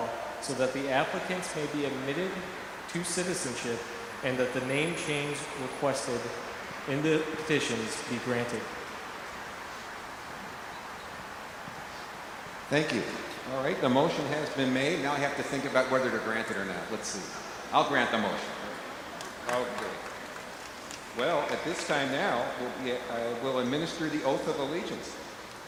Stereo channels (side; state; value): both; identical; correlation 1.00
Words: so that the applicants may be admitted to citizenship and that the name change requested in the petitions be granted. Thank you. All right, the motion has been made. Now I have to think about whether to grant it or not. Let's see. I'll grant the motion. Okay. Well, at this time now, we'll administer the oath of allegiance.